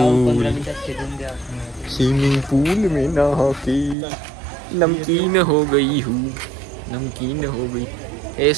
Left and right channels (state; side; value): drops out; left; at 4.0 s